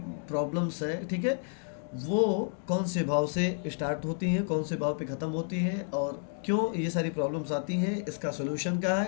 प्रॉब्लम्स है, ठीक है, वो कौन से भाव से स्टार्ट होती हैं, कौन से भाव पे ख़त्म होती हैं और क्यों ये सारी प्रॉब्लम्स आती हैं, इसका सोल्यूशन क्या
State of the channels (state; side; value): silent; right; 57 dB below the other